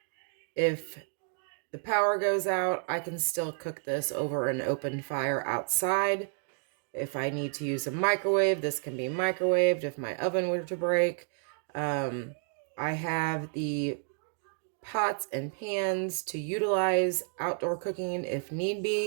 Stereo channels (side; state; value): left; silent; 57 dB below the other